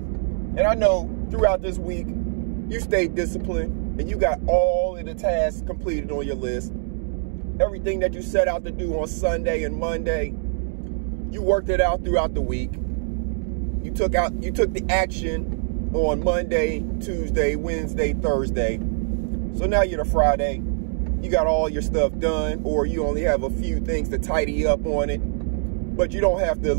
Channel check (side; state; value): left; silent; digital silence